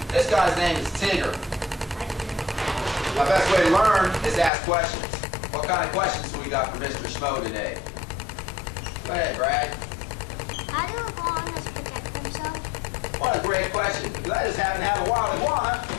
This guy's name is Tigger. My best way to learn is to ask questions. What kind of questions do we got for Mr. Schmo today? Go ahead, Brad. How do iguanas protect themselves? What a great question, because I just happen to have a wild iguana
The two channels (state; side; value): drops out; right; at 4.5 s